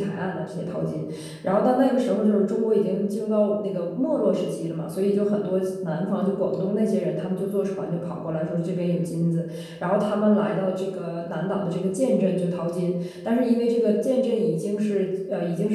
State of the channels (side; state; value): both; identical; correlation 1.00